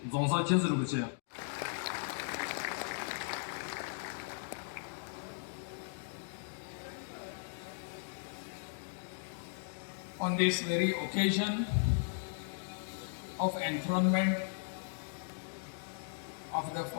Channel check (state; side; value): silent; right; digital silence